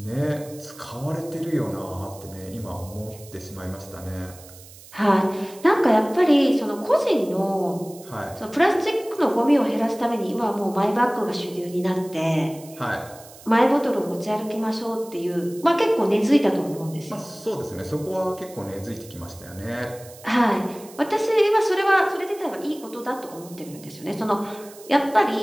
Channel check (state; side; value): noise; right; hiss, 20 dB below the sound